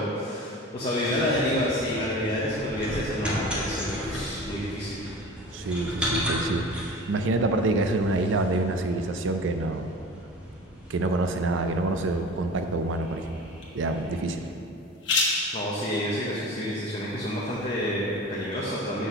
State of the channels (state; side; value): normal; both; correlation 0.37